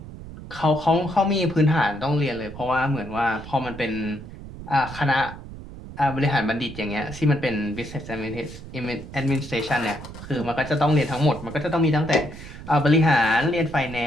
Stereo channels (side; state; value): right; noise; rumble, 14 dB below the sound